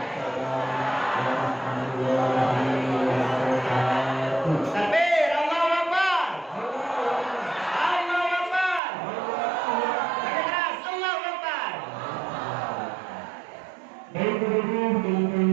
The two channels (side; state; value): left; drops out; at 8.8 s